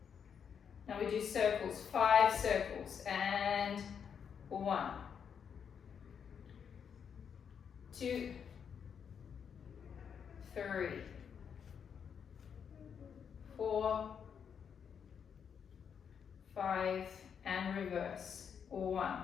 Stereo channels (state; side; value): quieter; right; 7.3 dB